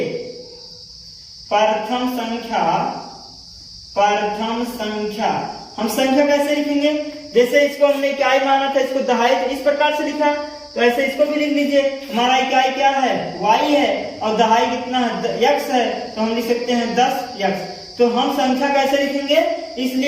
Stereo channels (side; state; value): both; identical; correlation 1.00